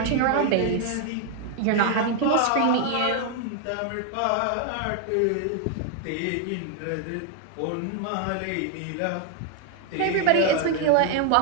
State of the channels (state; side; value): different; both; correlation 0.00